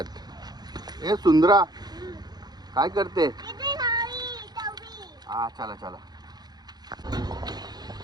ए सुंदरा, काय करते? हा, चला चला.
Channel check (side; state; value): left; late; 0.20 ms